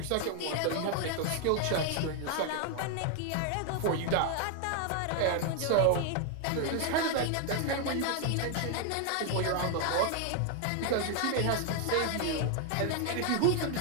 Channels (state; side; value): different; both; correlation 0.00